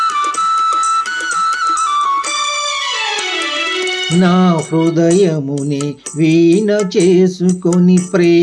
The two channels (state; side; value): identical; both; correlation 1.00